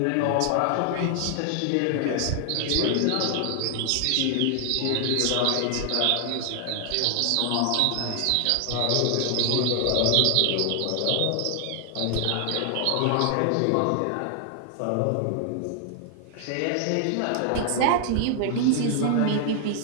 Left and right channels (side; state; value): both; different; correlation 0.00